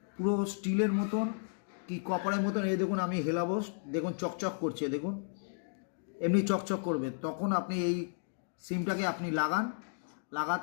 পুরো স্টিলের মতন কি কপারের মতন। এই দেখুন আমি হেলাবো, দেখুন চকচক করছে, দেখুন এমনি চকচক করবে। তখন আপনি এই সিমটাকে আপনি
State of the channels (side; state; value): right; silent; digital silence